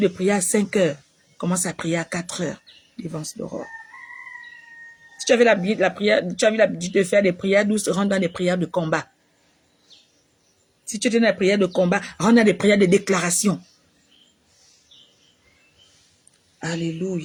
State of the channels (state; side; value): identical; both; correlation 1.00